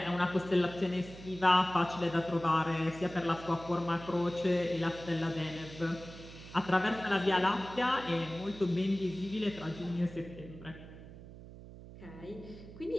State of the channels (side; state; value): right; noise; hum, 16 dB below the sound